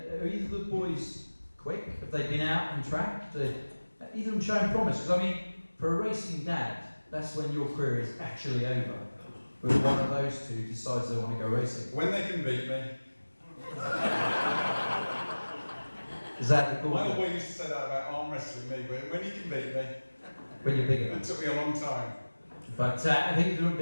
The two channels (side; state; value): both; inverted; correlation -1.00